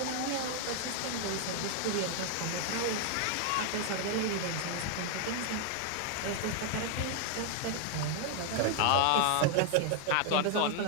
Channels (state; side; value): different; both; correlation 0.00